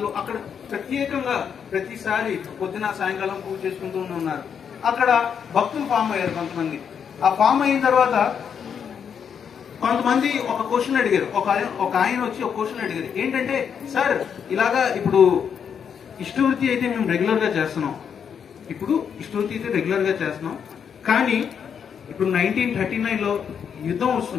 అక్కడ ప్రత్యేకంగా ప్రతిసారి పొద్దున సాయంకాలం పూజ చేసుకుంటూ ఉన్నారు. అక్కడ భక్తులు ఫామ్ అయ్యారు కొంతమంది. ఆ ఫామ్ అయిన తర్వాత కొంతమంది ఒక క్వశ్చన్ అడిగారు. ఒక ఆయన వచ్చి ఒక క్వశ్చన్ అడిగారు, ఏంటంటే సార్ ఇలాగా ఇప్పుడు ఇష్టవృత్తి అయితే మేము రెగ్యులర్ గా చేస్తున్నాం, కానీ ఇప్పుడు 1939లో యుద్ధం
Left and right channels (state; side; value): quieter; right; 7.4 dB